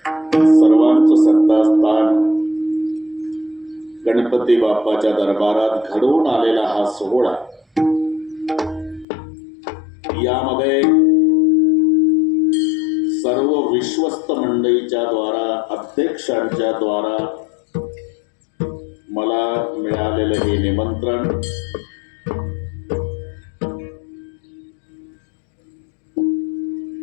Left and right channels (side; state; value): right; drops out; at 9.1 s